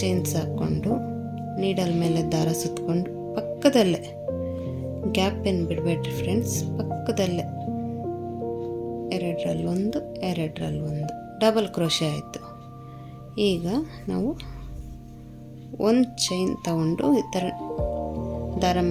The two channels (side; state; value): both; identical; correlation 1.00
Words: ಚೈನ್ಸ್ ಹಾಕ್ಕೊಂಡು ನೀಡಲ್ ಮೇಲೆ ದಾರ ಸುತ್ತಕೊಂಡು ಪಕ್ಕದಲ್ಲೇ, ಗ್ಯಾಪ್ ಏನು ಬಿಡಬೇಡ್ರಿ ಫ್ರೆಂಡ್ಸ್, ಪಕ್ಕದಲ್ಲೇ ಎರಡರಲ್ಲೊಂದು ಡಬಲ್ ಕ್ರೋಶೆ ಆಯಿತು. ಈಗ ನಾವು ಒಂದು ಚೈನ್ ತಗೊಂಡು ಈ ಥರ ದಾರ